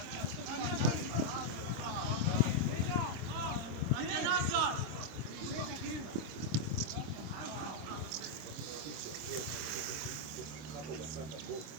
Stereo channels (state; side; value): late; left; 26 ms